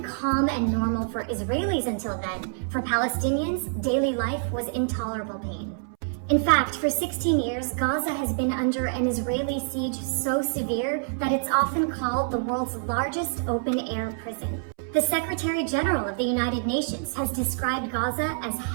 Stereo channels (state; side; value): silent; left; 61 dB below the other